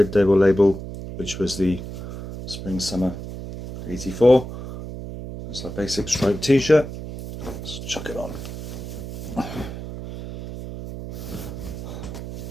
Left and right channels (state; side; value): noise; right; hum, 9 dB below the sound